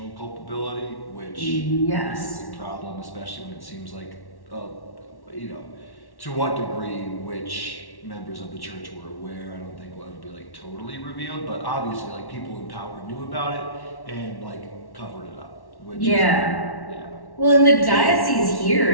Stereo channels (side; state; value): right; late; 1.1 ms